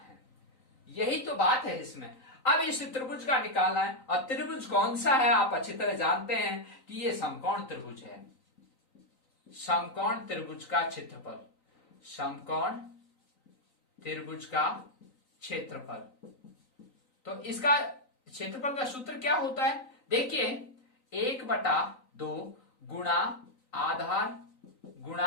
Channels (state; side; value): late; right; 3.9 ms